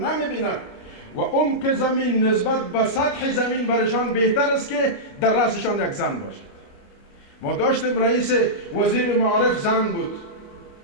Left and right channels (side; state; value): right; late; 29 ms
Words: و عمق زمین نسبت به سطح زمین برشان بهتر است که در رأسشان یک زن باشد. ما داشتیم رئیس وزیر معارف زن بود،